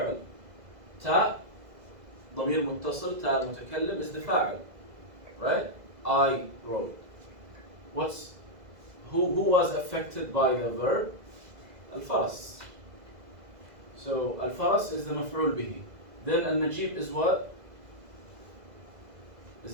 تا ضمير متصل, تا المتكلم is the فاعل. Right? I rode. Who was affected by the verb? Al-Faras. So Al-Faras is the مفعول به. Then Al-Najib is what?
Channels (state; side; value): late; left; 2.0 ms